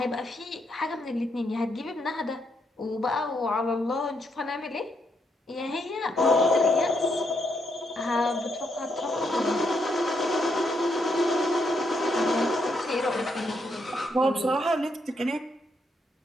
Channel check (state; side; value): normal; both; correlation 0.77